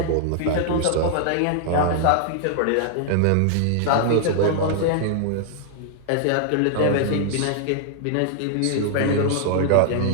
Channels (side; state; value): both; different; correlation 0.00